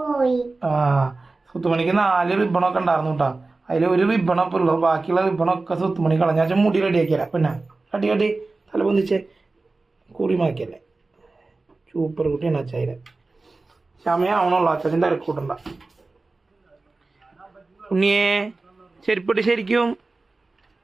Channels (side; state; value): left; quieter; 3.5 dB